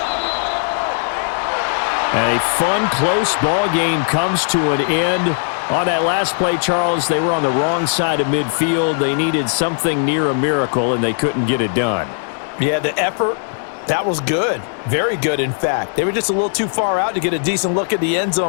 A fun, close ball game comes to an end. On that last play, Charles, they were on the wrong side of midfield. They needed something near a miracle, and they couldn't get it done. Yeah, the effort, that was good. Very good, in fact. They were just a little too far out to get a decent look at the end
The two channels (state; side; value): silent; right; digital silence